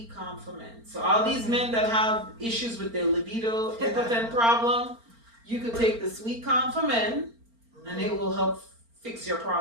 Calm for men. So all these men that have issues with their libido, impotent problem, you could take the Sweet Calm for men and it will help fix your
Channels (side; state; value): left; late; 4.4 ms